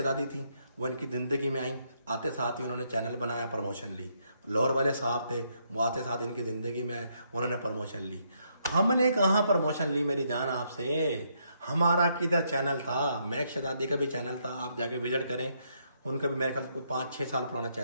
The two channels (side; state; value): both; inverted; correlation -0.75